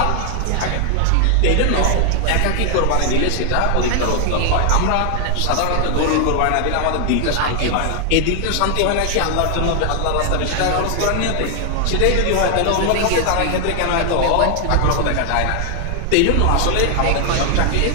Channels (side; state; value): both; different; correlation 0.00